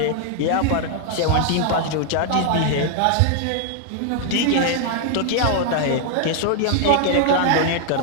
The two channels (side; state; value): both; different; correlation 0.00